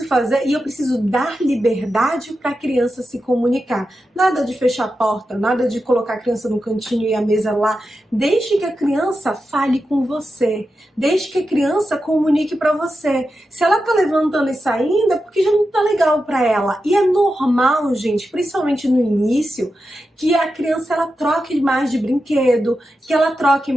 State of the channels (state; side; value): normal; both; correlation 0.90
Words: fazer e eu preciso dar liberdade para a criança se comunicar. Nada de fechar a porta, nada de colocar a criança no cantinho e a mesa lá. Deixe que a criança fale com você. Deixe que a criança comunique para você. Se ela tá levantando e saindo, é porque já não tá legal para ela. E é normal, gente, principalmente no início, que a criança ela troque mais de brinquedo, que ela troque